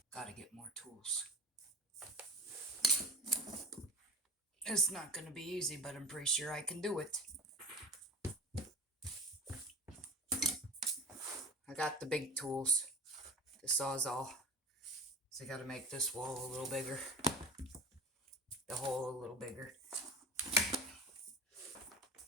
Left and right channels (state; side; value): normal; both; correlation 0.35